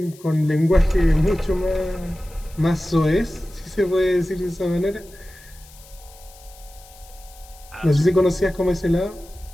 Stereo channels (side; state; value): left; noise; hiss, 23 dB below the sound